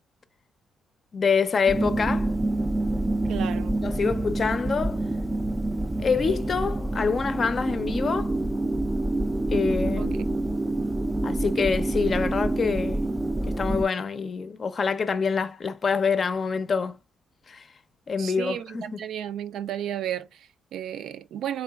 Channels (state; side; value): normal; both; correlation 0.88